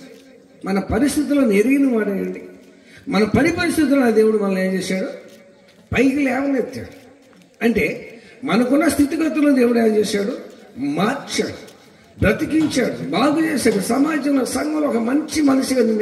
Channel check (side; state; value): both; identical; correlation 1.00